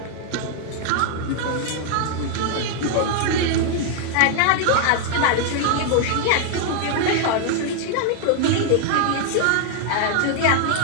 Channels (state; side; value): different; both; correlation 0.00